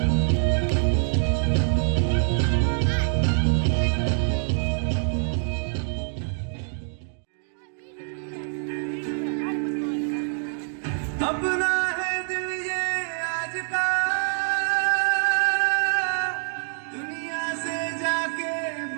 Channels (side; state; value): left; silent; 61 dB below the other